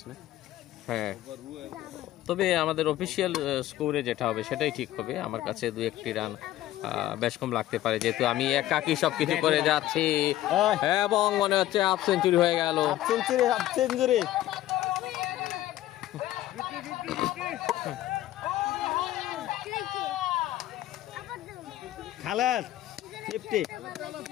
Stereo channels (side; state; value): right; quieter; 14.3 dB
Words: না? হ্যাঁ, তবে আমাদের অফিসিয়াল স্কোরে যেটা হবে সেটাই ঠিক হবে। আমার কাছে 2-1টি রান বেশ কম লাগতে পারে, যেহেতু আমি একাকি সবকিছু করে যাচ্ছি এবং মনে হচ্ছে হাফ সেঞ্চুরি হয়ে গেল। Half century Khaled, 50